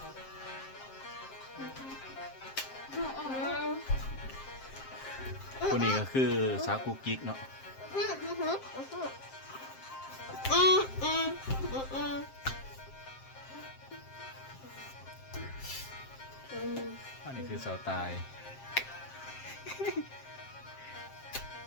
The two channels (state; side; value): late; right; 7.6 ms